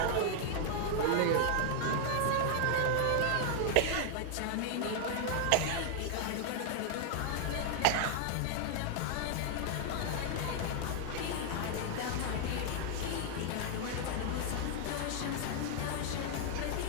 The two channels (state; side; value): different; both; correlation 0.00